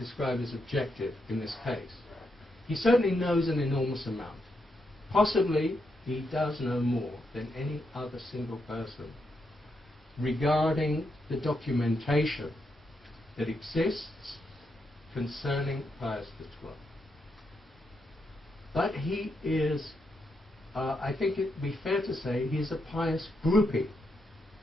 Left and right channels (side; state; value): both; normal; correlation 0.81